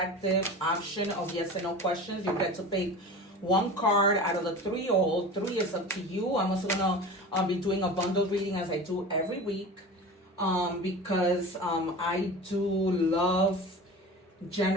option of yes and no questions. You get to pick one card out of the three, or all three is up to you. I'm also going to be doing a bundle reading as I do every week. Because I do love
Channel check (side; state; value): both; normal; correlation 0.34